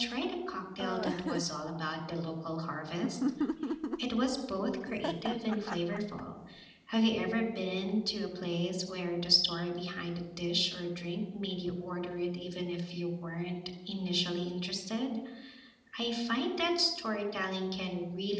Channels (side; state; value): both; identical; correlation 1.00